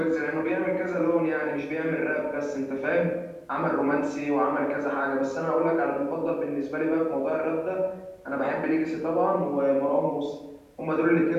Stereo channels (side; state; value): both; identical; correlation 1.00